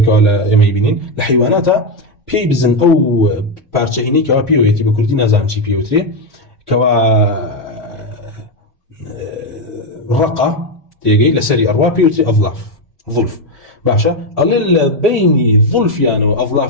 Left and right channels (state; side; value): normal; both; correlation 0.07